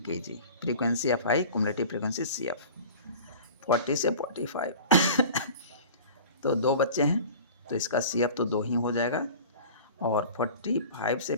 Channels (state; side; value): inverted; both; correlation -0.41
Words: kg, frequency F I, cumulative frequency C F. 40 से 45 तो 2 बच्चे हैं तो इसका सी एफ तो 2 ही हो जाएगा। और 45 से